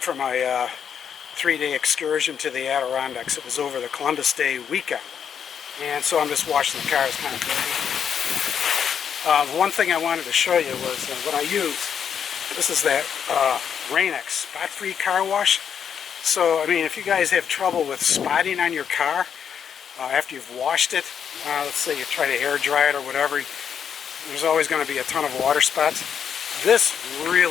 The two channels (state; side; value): quieter; right; 7.9 dB